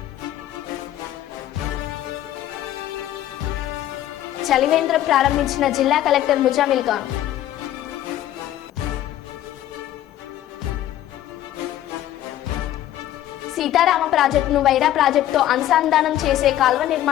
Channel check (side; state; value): right; quieter; 12.8 dB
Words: చలివేంద్రం ప్రారంభించిన జిల్లా కలెక్టర్ ముజామిల్ ఖాన్. సీతారామ ప్రాజెక్టును వైరా ప్రాజెక్టుతో అనుసంధానం చేసే కాల్వ